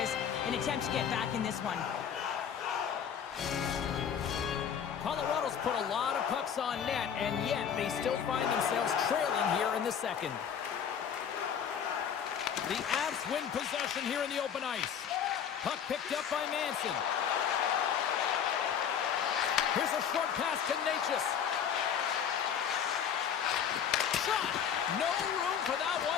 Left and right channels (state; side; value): quieter; right; 8.2 dB